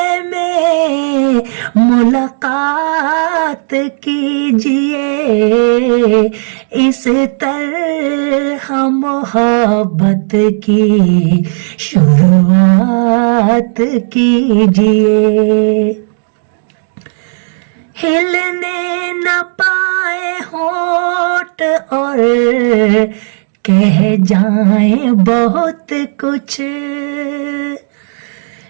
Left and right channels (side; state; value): left; silent; 65 dB below the other